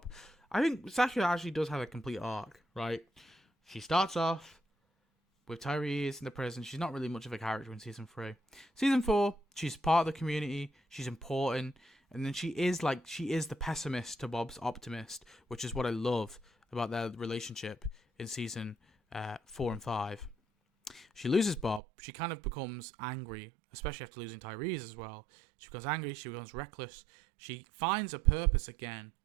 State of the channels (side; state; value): left; drops out; at 21.8 s